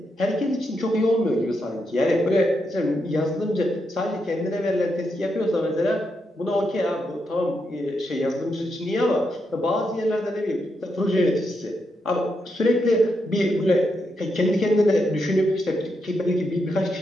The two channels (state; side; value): normal; both; correlation 0.82